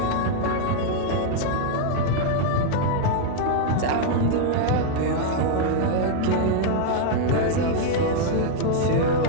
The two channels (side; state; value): both; different; correlation 0.00